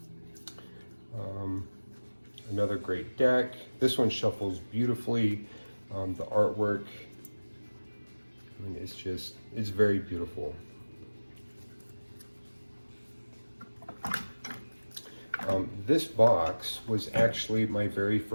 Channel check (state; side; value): inverted; both; correlation -1.00